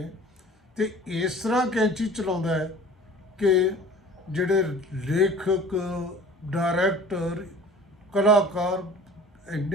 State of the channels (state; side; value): normal; both; correlation 0.45